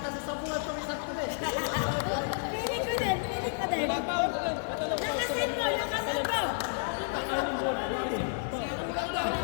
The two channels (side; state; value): right; silent; digital silence